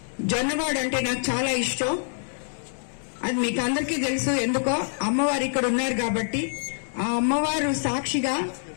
జొన్నవాడు అంటే నాకు చాలా ఇష్టం. అది మీకు అందరికీ తెలుసు. ఎందుకో అమ్మవారు ఇక్కడ ఉన్నారు కాబట్టి. ఆ అమ్మవారు సాక్షిగా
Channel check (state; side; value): silent; right; digital silence